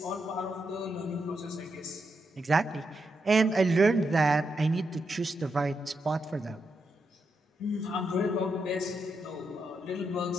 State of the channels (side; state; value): both; normal; correlation 0.83